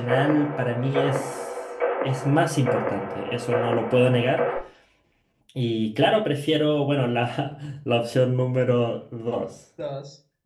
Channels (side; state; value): both; identical; correlation 1.00